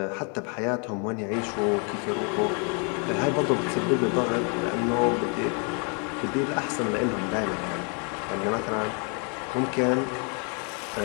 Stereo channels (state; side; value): quieter; right; 37.4 dB